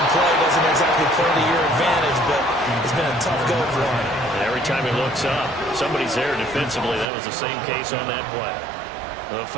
play doesn't exactly play to your advantage, but it's been a tough go for him. And every time he looks up, somebody's there defensively. That was the same case on that play. The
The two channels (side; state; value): left; drops out; at 7.1 s